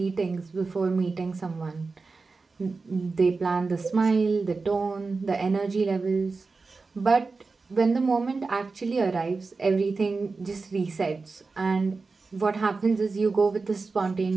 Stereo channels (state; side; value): quieter; left; 4.1 dB